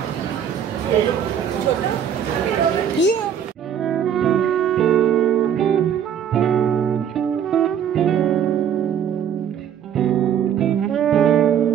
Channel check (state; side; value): quieter; left; 8.8 dB